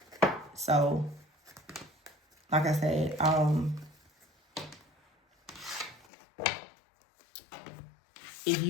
So, like I said, if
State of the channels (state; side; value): drops out; right; at 6.1 s